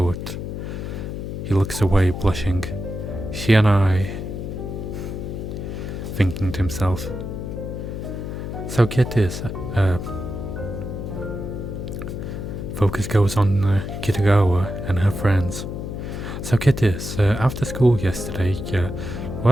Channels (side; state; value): left; noise; hum, 6 dB below the sound